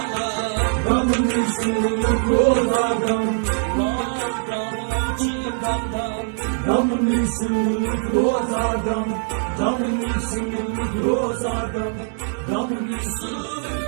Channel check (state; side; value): silent; left; 64 dB below the other